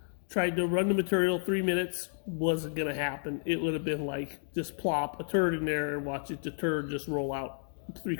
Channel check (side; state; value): right; silent; digital silence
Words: Tried to run the material 3 minutes. Wasn't gonna happen. It would have been like just plop a turd in there and watch it, the turd just roll out